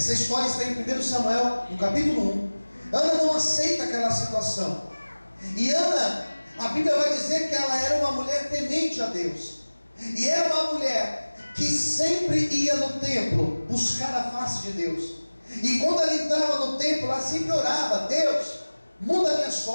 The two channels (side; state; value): both; inverted; correlation -1.00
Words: história está em 1 Samuel, no capítulo 1. Ana não aceita aquela situação. E Ana, a Bíblia vai dizer que ela era uma mulher temente a Deus. E era uma mulher que sempre ia no templo buscar a face de Deus. E quando ela entrava no templo, ela sempre orava: Deus, muda a minha